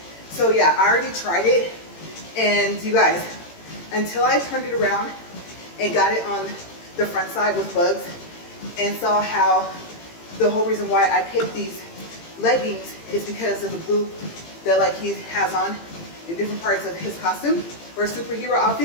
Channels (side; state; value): right; late; 18 ms